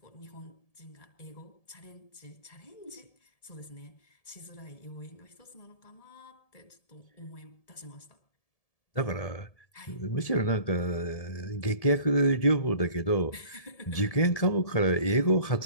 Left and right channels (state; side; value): late; right; 1.7 ms